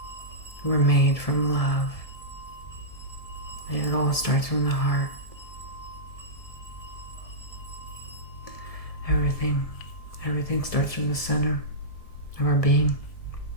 We're made from love. And it all starts from the heart. Everything starts from the center of our being.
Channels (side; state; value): right; late; 1.7 ms